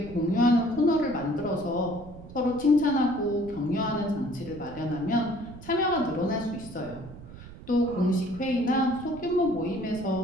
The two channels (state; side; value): noise; right; rumble, 16 dB below the sound